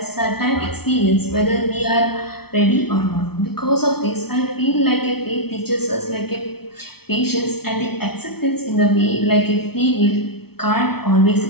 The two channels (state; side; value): late; right; 0.95 ms